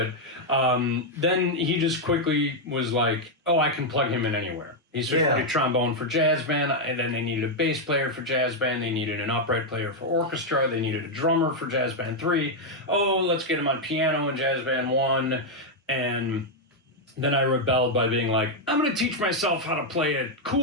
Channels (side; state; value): both; normal; correlation 0.00